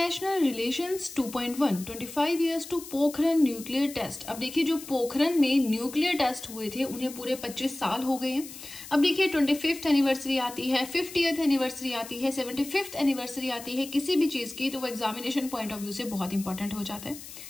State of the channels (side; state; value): left; noise; hiss, 14 dB below the sound